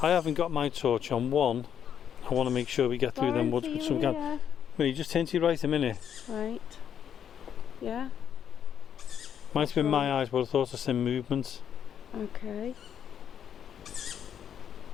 I haven't got my torch on. One, I want to make sure we get through them woods with some gas. Will you just turn to your right a minute? Right. Yeah. Might have been my eyes, but I thought I seen movement. Okay.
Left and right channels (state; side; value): quieter; right; 8.7 dB